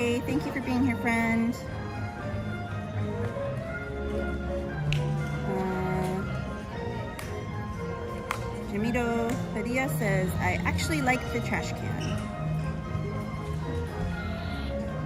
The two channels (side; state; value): both; identical; correlation 1.00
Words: Thank you for being here, friend. Jamito Padilla says, I actually like the trash can.